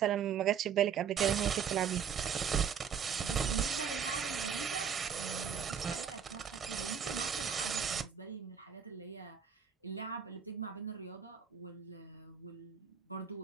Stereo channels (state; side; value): quieter; left; 7.5 dB